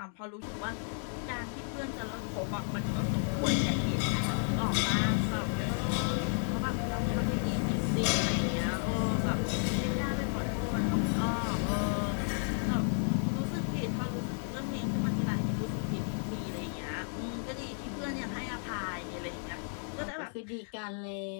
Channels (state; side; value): silent; right; 56 dB below the other